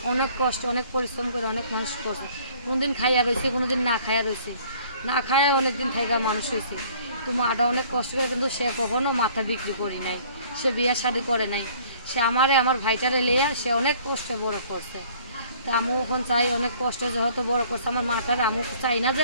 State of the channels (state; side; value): inverted; both; correlation -0.56